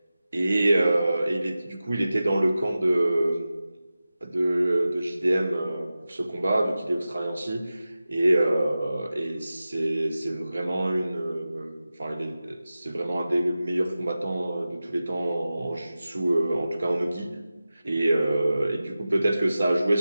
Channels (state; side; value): inverted; both; correlation -0.94